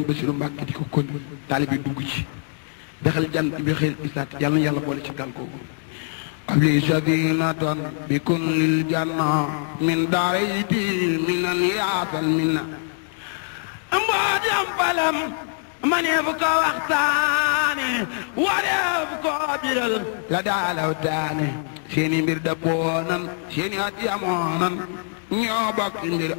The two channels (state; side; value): silent; right; 60 dB below the other